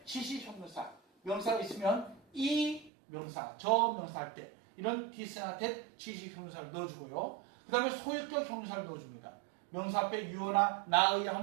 지시형용사. 명사가 있으면 이 명사, 저 명사 할 때 이런 this나 that 지시형용사를 넣어주고요. 그 다음에 소유격 형용사를 넣어줍니다. 명사 앞에 you나 나의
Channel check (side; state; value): left; drops out; at 2.9 s